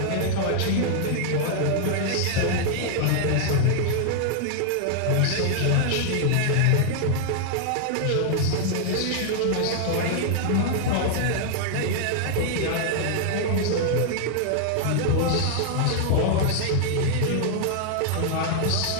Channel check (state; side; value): different; both; correlation 0.00